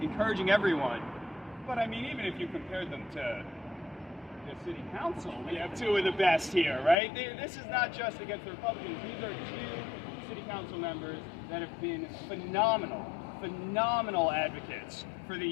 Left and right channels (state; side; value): drops out; right; at 7.0 s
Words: encouraging everyone. But I mean, even if you compared them to the city council, we have two of the best here, right? This is not just against the Republicans. These are two city council members that have been phenomenal advocates for the